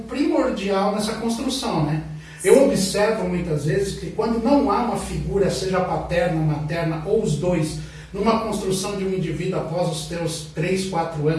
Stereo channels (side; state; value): both; identical; correlation 1.00